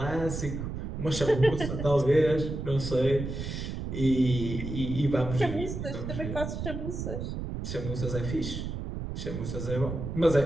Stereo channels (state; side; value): noise; right; rumble, 5 dB below the sound